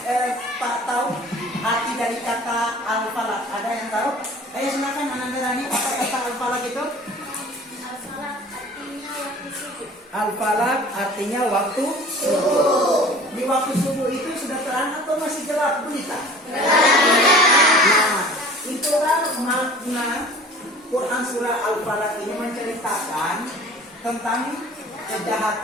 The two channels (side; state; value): both; normal; correlation 0.45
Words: Pak tahu arti dari kata Al-Falaq? Ada yang tahu? Ayo silakan Ananda Rani, apa kata Al-Falaq itu? Al-Falaq artinya waktu subuh. Di waktu subuh itu sudah terang atau masih gelap gulita? Nah, itulah makna Quran surah Al-Falaq ini menceritakan tentang